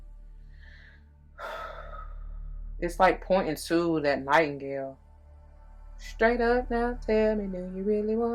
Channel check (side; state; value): both; identical; correlation 1.00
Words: It's like pointing to that Nightingale. Straight up now, tell me, do you really